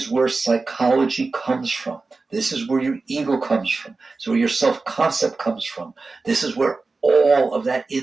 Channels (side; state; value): left; quieter; 3.8 dB